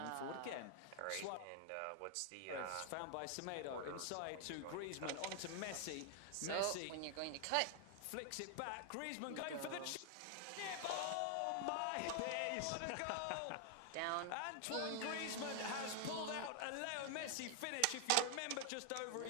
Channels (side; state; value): both; different; correlation 0.00